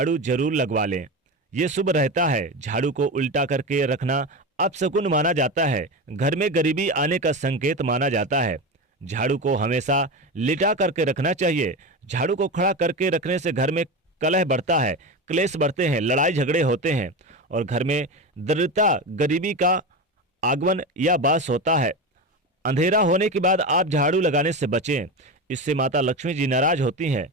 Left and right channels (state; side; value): normal; both; correlation 0.21